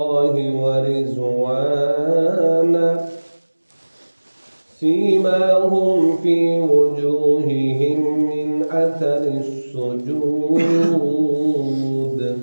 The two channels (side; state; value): both; inverted; correlation -1.00